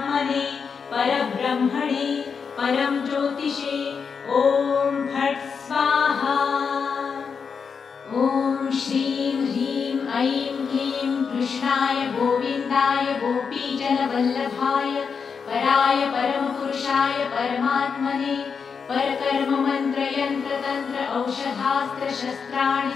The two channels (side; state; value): right; quieter; 5.9 dB